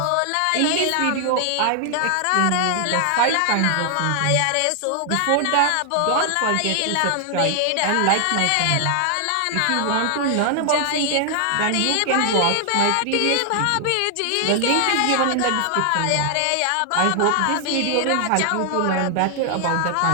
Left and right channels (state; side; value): different; both; correlation 0.00